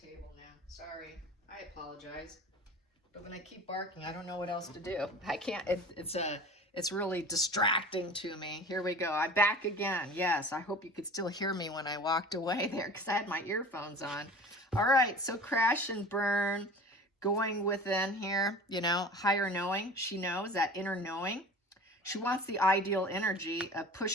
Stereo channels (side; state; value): both; normal; correlation 0.39